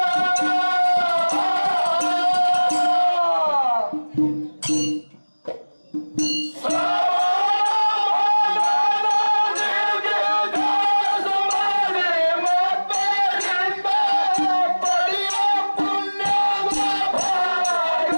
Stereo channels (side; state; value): both; inverted; correlation -1.00